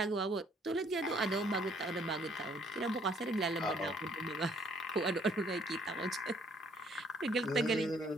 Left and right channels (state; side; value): normal; both; correlation 0.63